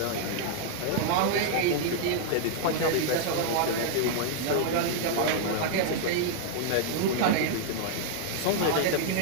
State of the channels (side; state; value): both; different; correlation -0.01